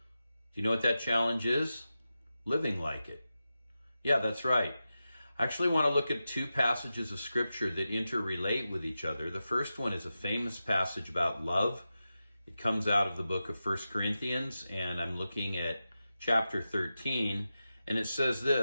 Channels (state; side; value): inverted; both; correlation -0.92